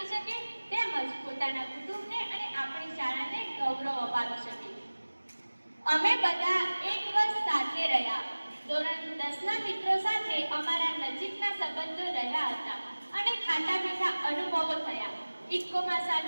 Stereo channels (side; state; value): both; inverted; correlation -1.00